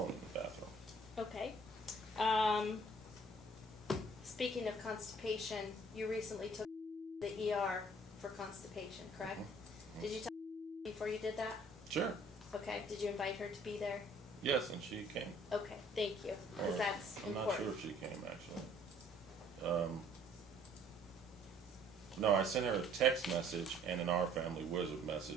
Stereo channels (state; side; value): normal; both; correlation 0.58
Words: in the bathroom. Okay. Speaking of constipation, you recently took the ER for constipation, correct? Mhm. Did you tell her before you did that? Sure. Okay. Did you invite her to be there? Yes, and she came. Okay, thank you, because Or, that's I'm important. not sure if she came, actually. No, I sent her a text message and an Our Family Wizard